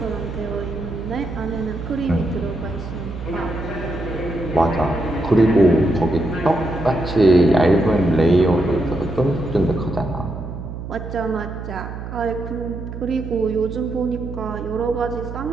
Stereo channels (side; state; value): right; noise; hum, 9 dB below the sound